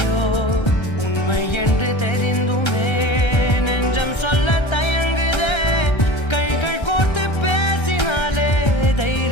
உண்மை என்று தெரிந்துமே நெஞ்சம் சொல்ல தயங்குதே கைகள் கோர்த்து பேசினாலே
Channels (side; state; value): right; late; 1.3 ms